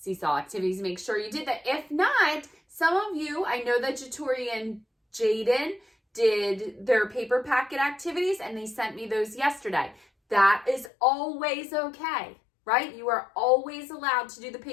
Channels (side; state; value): right; drops out; at 10.9 s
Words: activities. Make sure you did that. If not, some of you, I know that Jatori and Jaden did their paper packet activities, and they sent me those yesterday. That is always okay, right? You are always allowed to do the